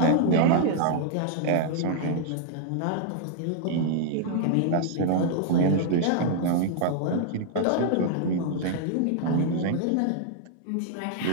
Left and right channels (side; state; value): both; different; correlation -0.01